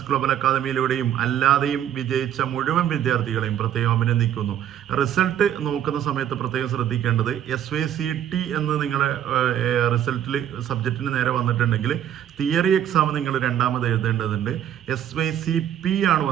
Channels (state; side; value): quieter; left; 10.4 dB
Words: ഗ്ലോബൽ അക്കാദമിയിലൂടെയും അല്ലാതെയും വിജയിച്ച മുഴുവൻ വിദ്യാർത്ഥികളെയും പ്രത്യേകം അഭിനന്ദിക്കുന്നു. റിസൾട്ട് നോക്കുന്ന സമയത്ത് പ്രത്യേകം ശ്രദ്ധിക്കേണ്ടത് SYCT എന്ന് നിങ്ങളുടെ റിസൾട്ടിൽ സബ്ജക്റ്റിന് നേരെ വന്നിട്ടുണ്ടെങ്കിൽ തിയറി എക്സാം നിങ്ങൾ രണ്ടാമത് എഴുതേണ്ടതുണ്ട്. SYCP ആണ്